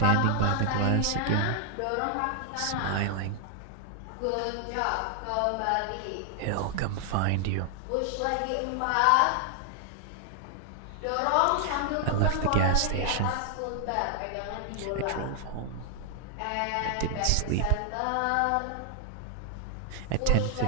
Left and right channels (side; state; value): both; different; correlation 0.00